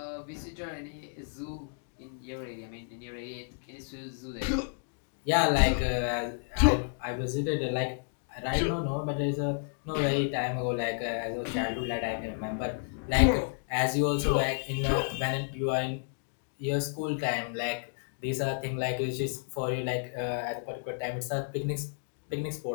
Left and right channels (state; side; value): silent; right; digital silence